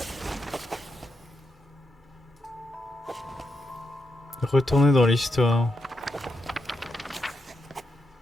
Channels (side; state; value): both; normal; correlation 0.84